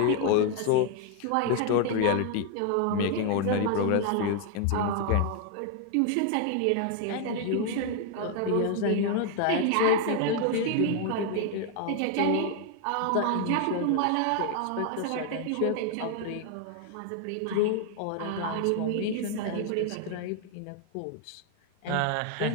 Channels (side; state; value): both; different; correlation 0.00